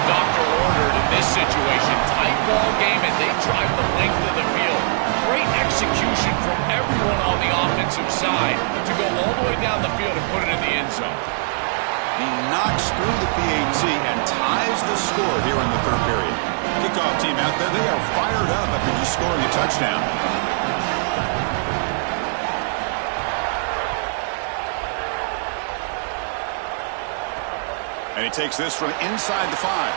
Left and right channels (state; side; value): silent; left; 65 dB below the other